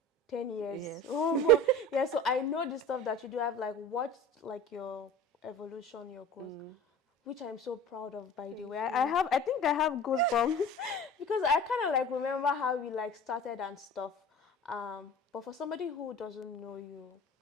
10 years. Yes. Oh my. Yeah, so I know the stuff that you do. I've like watched like your evolution, your growth, which I'm so proud of, by the way. I think I have goosebumps because I kind of like remember how we like started and stuff. But for somebody who doesn't know you,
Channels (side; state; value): both; normal; correlation 0.39